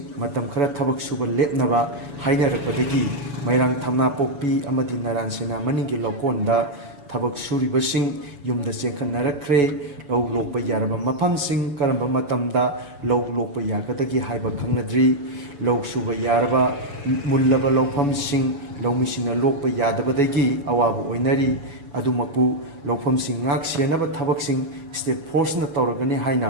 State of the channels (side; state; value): left; late; 7.0 ms